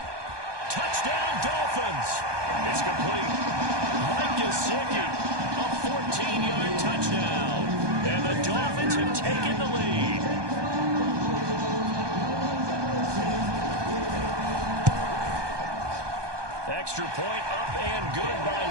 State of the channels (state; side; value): late; left; 1.2 ms